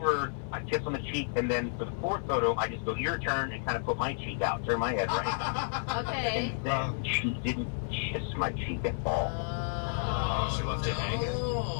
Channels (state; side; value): silent; right; 57 dB below the other